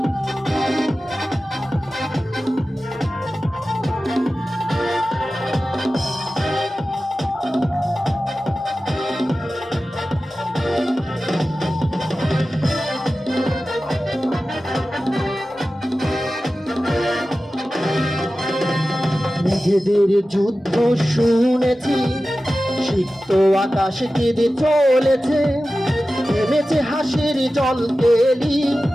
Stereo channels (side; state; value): both; normal; correlation 0.95